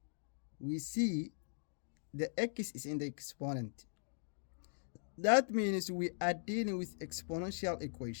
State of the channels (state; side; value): silent; right; digital silence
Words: We see the x is in the exponent. That means we are dealing with exponential